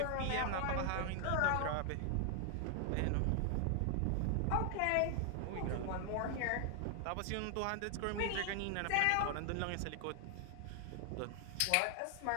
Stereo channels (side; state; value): both; different; correlation 0.00